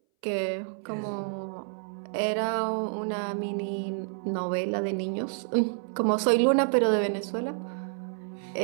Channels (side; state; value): left; silent; 59 dB below the other